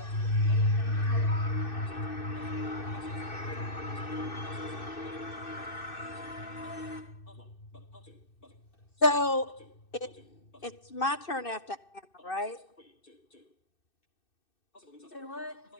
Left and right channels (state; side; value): late; right; 2.6 ms